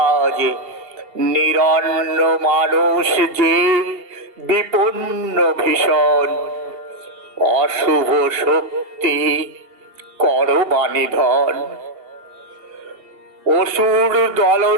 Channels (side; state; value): left; late; 2.7 ms